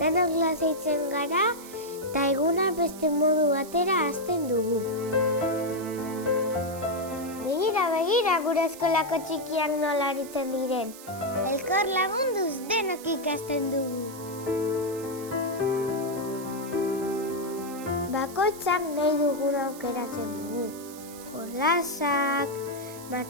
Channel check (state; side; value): noise; right; hiss, 16 dB below the sound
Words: lasaitzen gara eta eguna beste modu batera hasten dugu. Begira gure eskolako txikiak nola aritzen diren. Elkar lagunduz denok ikasten dugu. Bakoitzak nahi dugun aukeratzen dugu. Jolasak,